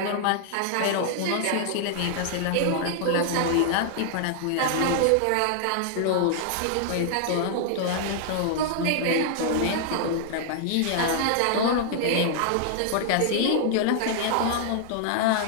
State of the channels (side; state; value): both; different; correlation -0.01